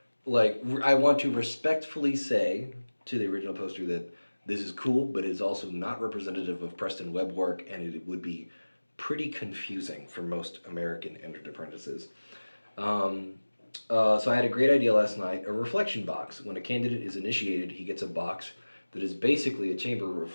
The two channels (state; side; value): inverted; both; correlation -1.00